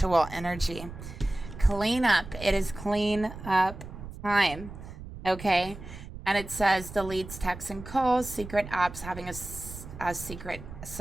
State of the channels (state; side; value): noise; right; rumble, 12 dB below the sound